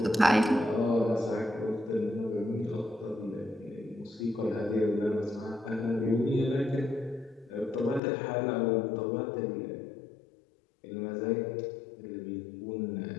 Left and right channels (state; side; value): drops out; right; at 8.0 s